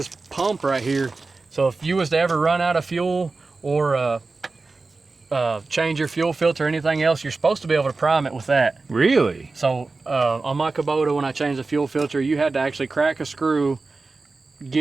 pump right here. So if you was to ever run out of fuel or change your fuel filter or anything else, you're supposed to be able to prime it with that. Really? So on my Kubota, when I changed the fuel filter, you had to actually crack a screw,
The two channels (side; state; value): left; quieter; 3.8 dB